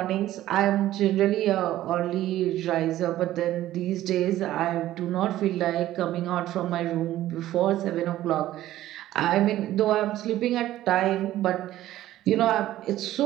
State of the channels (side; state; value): left; quieter; 14.1 dB